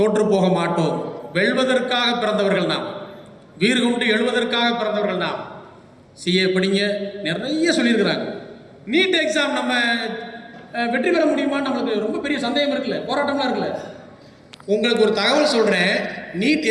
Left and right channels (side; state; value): both; identical; correlation 1.00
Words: போக மாட்டோம். வெல்வதற்காக பிறந்தவர்கள் நாம், வீறு கொண்டு எழுவதற்காக பிறந்தவர்கள் நாம். சிஏ படிங்க, நிறைய சொல்லியிருக்கிறாங்க. நீட் எக்ஸாம் நம்ம வெற்றி பெற முடியுமான்னு நம்மளுக்கு ரொம்ப பெரிய சந்தேகம் இருக்குல்ல, போராட்டம்லாம் இருக்குல்ல. உங்களுக்கு ஒரு தகவல் சொல்கிறேன். நீட்